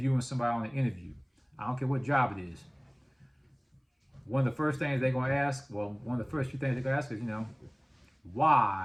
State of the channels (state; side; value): identical; both; correlation 1.00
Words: somebody on an interview, I don't care what job it is. One of the first things they're gonna ask, one of the first few things they're gonna ask is,